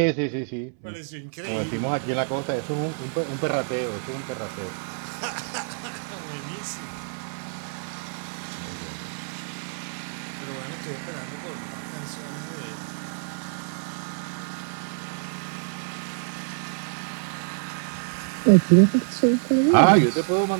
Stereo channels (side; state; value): left; silent; 59 dB below the other